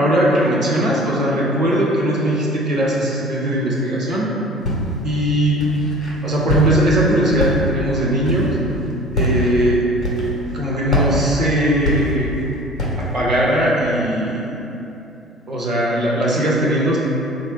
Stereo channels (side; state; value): both; normal; correlation 0.43